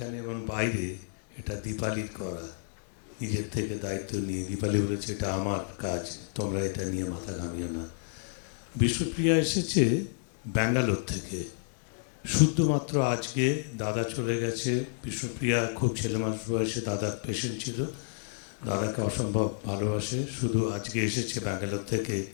এবং বাইরে এটা দীপালি করা, নিজের থেকে দায়িত্ব নিয়ে দীপালি বলেছে এটা আমার কাজ, তোমরা এটা নিয়ে মাথা ঘামিও না। বিষ্ণুপ্রিয়া এসেছে ব্যাঙ্গালোর থেকে, শুধুমাত্র আজকে দাদা চলে গেছে। বিষ্ণুপ্রিয়া খুব ছেলে মানুষ বয়সে দাদার পেশেন্ট ছিল, দাদাকে অসম্ভব ভালোবাসে, শুধু আজকে এসেছে ব্যাঙ্গালোর থেকে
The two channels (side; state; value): right; silent; digital silence